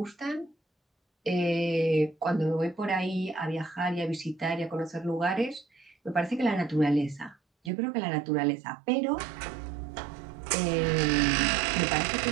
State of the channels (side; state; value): left; drops out; at 7.7 s